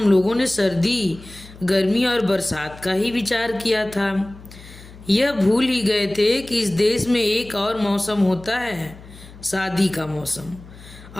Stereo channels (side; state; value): left; noise; hum, 19 dB below the sound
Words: लोगों ने सर्दी, गर्मी और बरसात का ही विचार किया था। यह भूल ही गए थे कि इस देश में एक और मौसम होता है, शादी का मौसम।